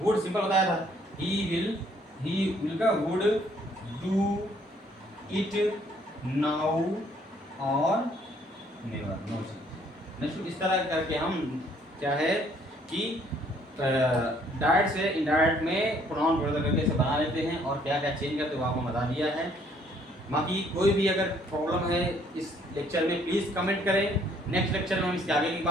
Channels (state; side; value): normal; both; correlation 0.63